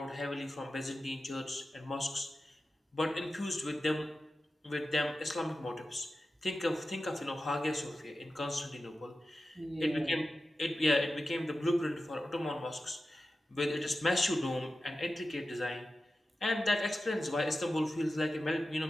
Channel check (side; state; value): both; normal; correlation 0.93